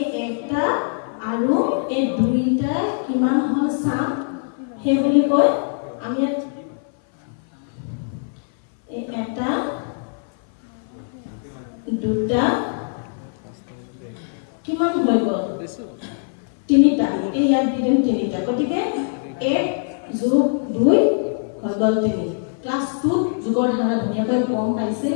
একটা আৰু এই দুইটা কিমান হল চাম হে বুলি কয় আমি এই এটা দুটা কিমান হৈ গল তিনিটা এই ইয়াত দিম তিনিটা গতিকে 1 যোগ 2 হৈ গল 3 ক্লাস 2 যুগৰ ধাৰা ধুনীয়াকৈ গম পাইছে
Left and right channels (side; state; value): right; silent; 58 dB below the other